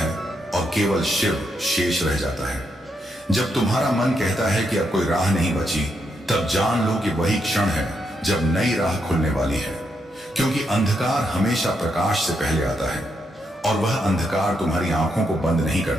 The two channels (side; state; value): both; normal; correlation 0.80